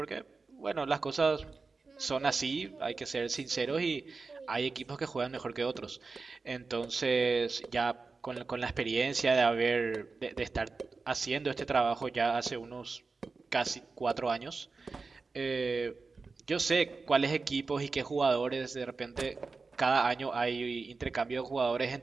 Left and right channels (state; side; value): quieter; left; 4.2 dB